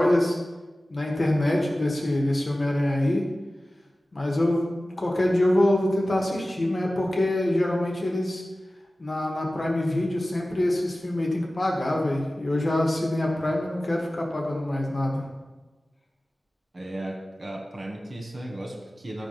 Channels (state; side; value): normal; both; correlation 0.96